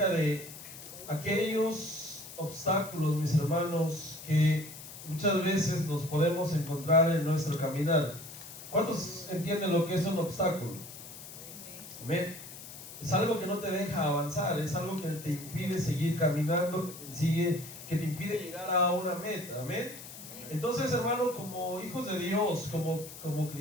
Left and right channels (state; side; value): noise; left; hiss, 14 dB below the sound